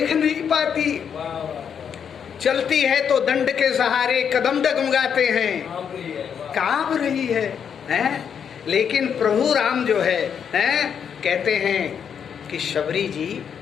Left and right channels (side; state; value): right; quieter; 7.6 dB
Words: नहीं पाती, चलती है तो दंड के सहारे कदम डगमगाते हैं, कांप रही है। लेकिन प्रभु राम जो है कहते हैं कि शबरी जी